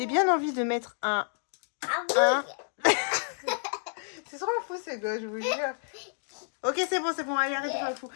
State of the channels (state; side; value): silent; right; digital silence